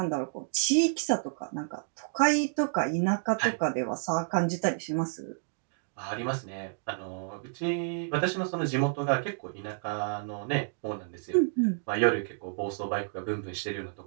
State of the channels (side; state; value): left; silent; digital silence